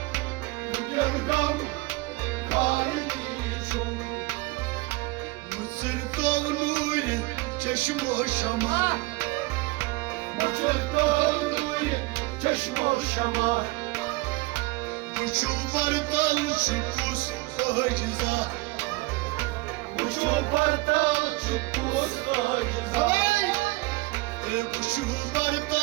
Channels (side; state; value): left; quieter; 22.9 dB